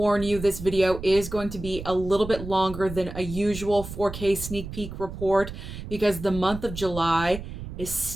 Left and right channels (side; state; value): right; noise; rumble, 10 dB below the sound